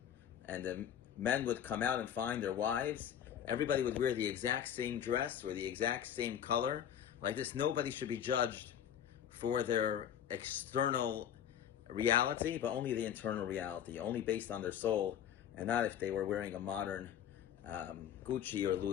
and the men would come out and find their wives. Everybody would wear the exact same dress or the exact same color. Like this, nobody should be judged for their external reality, but only the internal reality, only based on their soul, and not if they were wearing a modern Gucci or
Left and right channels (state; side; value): quieter; right; 9.6 dB